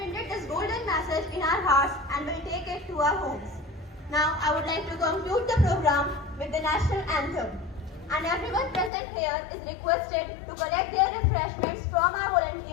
this golden message in our hearts and will take it to our homes. Now, I would like to conclude the program with the national anthem. And everyone present here is requested to collect their refreshments from our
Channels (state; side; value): drops out; right; at 8.9 s